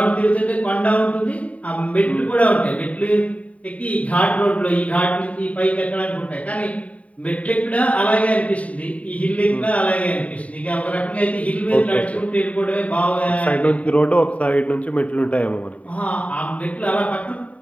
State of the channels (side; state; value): right; late; 0.067 ms